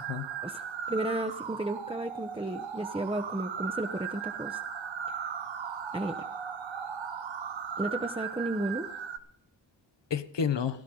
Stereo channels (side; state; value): both; normal; correlation 0.42